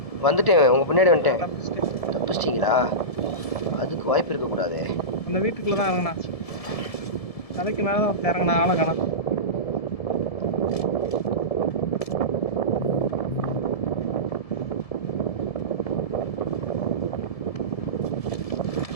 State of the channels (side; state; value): right; late; 1.7 ms